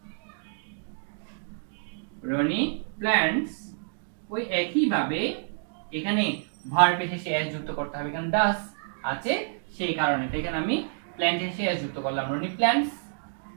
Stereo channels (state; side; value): silent; left; digital silence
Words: প্ল্যান্টস, ওই একই ভাবে এখানে ভার্ব এর শেষে এস যুক্ত করতে হবে, কারণ ডাস আছে সেই কারণে। তো এখানে আমি প্ল্যান্ট এর শেষে এস যুক্ত করলাম, Roni plants